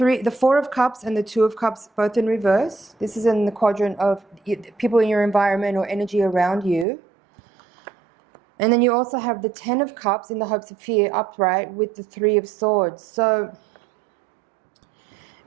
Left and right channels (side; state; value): left; drops out; at 6.9 s